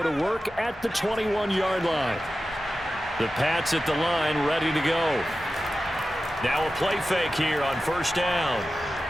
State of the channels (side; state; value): both; normal; correlation 0.94